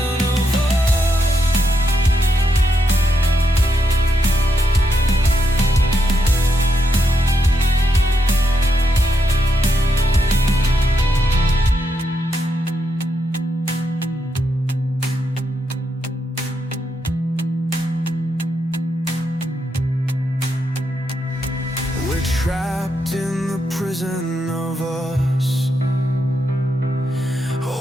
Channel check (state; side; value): normal; both; correlation 0.81